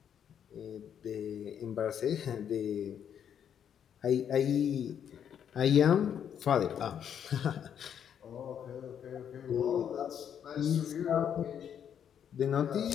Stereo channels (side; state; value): right; quieter; 8.7 dB